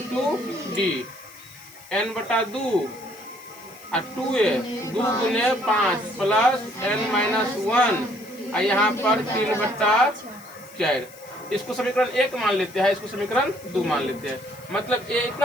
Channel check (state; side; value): noise; left; hiss, 21 dB below the sound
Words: d n/2 और 2a 2 गुने 5 प्लस n-1 और यहाँ पर 3/4। इसको समीकरण 1 मान लेते हैं, इसको समीकरण 2 मान लेते हैं। मतलब a